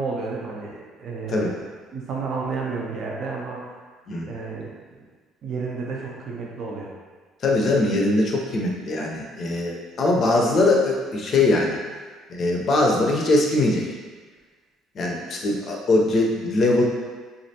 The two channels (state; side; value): normal; both; correlation 0.68